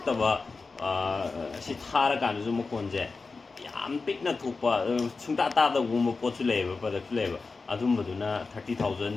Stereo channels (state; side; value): quieter; right; 4.2 dB